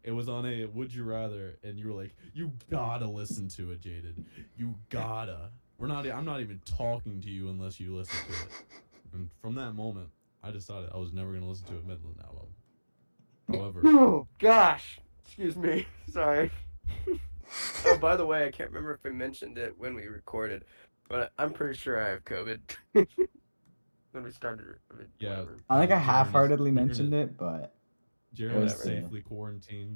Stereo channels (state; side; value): inverted; both; correlation -1.00